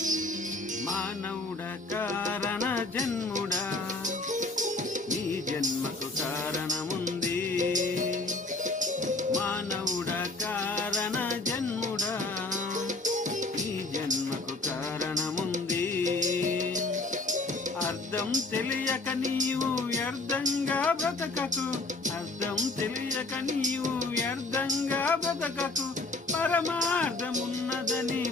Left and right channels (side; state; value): right; quieter; 3.1 dB